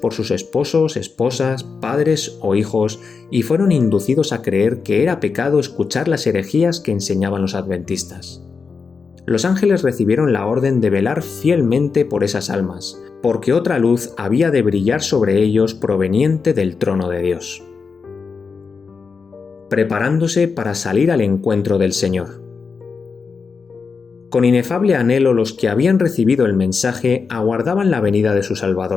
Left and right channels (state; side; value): quieter; right; 5.2 dB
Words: sus esposos, esposas, padres o hijos y fueron inducidos a creer que era pecado escuchar las herejías que enseñaban los adventistas. Los ángeles recibieron la orden de velar fielmente por esas almas, porque otra luz había de brillar sobre ellos proveniente del trono de Dios. Preparándose para salir al encuentro del Señor. Con inefable anhelo los que habían recibido el mensaje aguardaban la venida de su